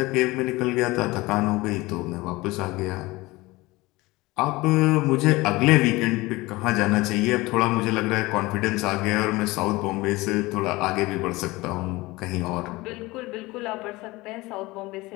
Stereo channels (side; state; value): right; quieter; 21.2 dB